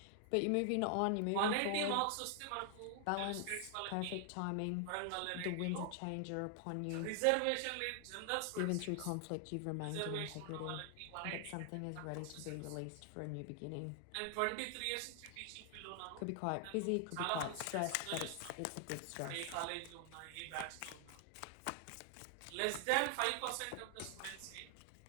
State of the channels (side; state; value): both; different; correlation 0.00